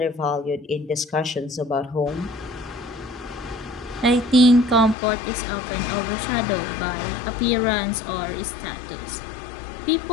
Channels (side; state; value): right; drops out; at 5.0 s